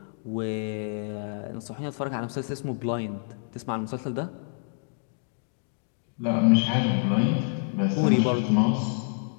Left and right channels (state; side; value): silent; right; digital silence